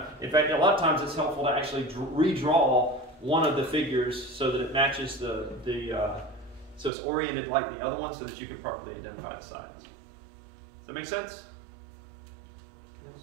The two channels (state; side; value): drops out; left; at 6.9 s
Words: in fact, a lot of times it's helpful to actually redraw one of the figures so that it matches so it's oriented like the other one so that you can properly identify the sides. Does that make sense?